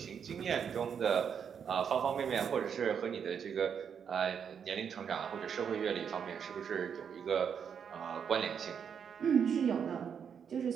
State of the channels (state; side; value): quieter; left; 7.4 dB